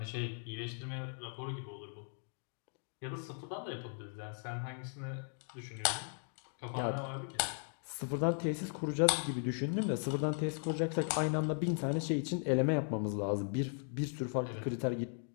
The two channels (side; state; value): right; silent; 53 dB below the other